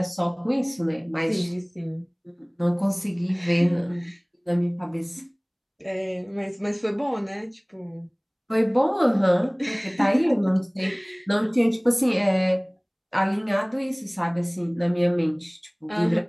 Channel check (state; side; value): identical; both; correlation 1.00